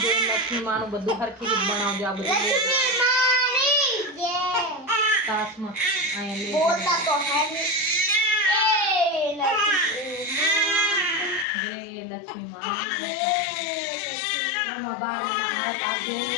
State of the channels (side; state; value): right; drops out; at 11.5 s